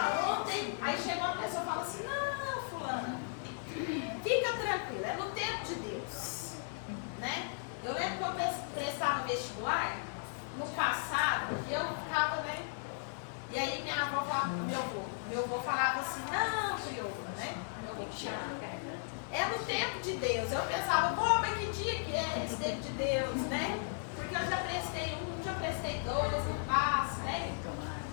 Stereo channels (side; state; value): right; silent; digital silence